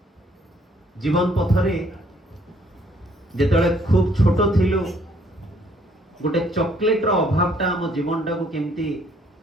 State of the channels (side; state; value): both; normal; correlation 0.64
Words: जीवन पथरे जेतले खूब छोट थिलु गोटे चॉकलेट रो अभावटा हम जीवनटा को केमिति